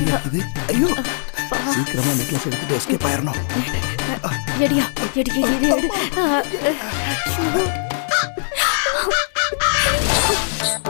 ஐயோ, சீக்கிரமா நெக்லஸ் எடுத்துட்டு எஸ்கேப் ஆயிரணும். எடியா, எடி.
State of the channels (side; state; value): right; silent; 66 dB below the other